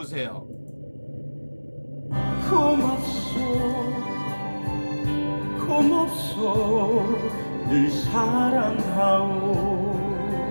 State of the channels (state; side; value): inverted; both; correlation -1.00